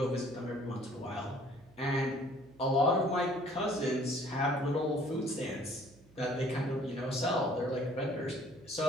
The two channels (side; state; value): right; noise; hum, 26 dB below the sound